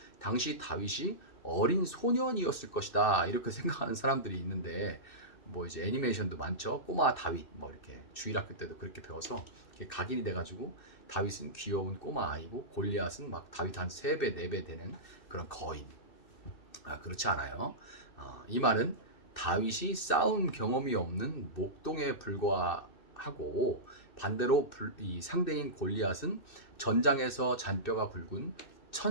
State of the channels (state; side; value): late; right; 2.6 ms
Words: 당시 다윗이 어린 소년이었을 것이다 이렇게 생각하는 사람들이 있는데 뭐 이제 애니메이션도 많죠. 꼬마 다윗 뭐 이렇게 주일학교 때도 그렇게 배워서 이렇게 각인이 돼가지고 다윗은 귀여운 꼬마 아이고 골리앗은 막 다윗 한 3배 4배 되는 그런 거인. 그렇지 않아요. 이 말은 다윗이 싸움 경험이 없는 목동에 불과하고 반대로 이 상대인 골리앗은 전장에서 잔뼈가 굵은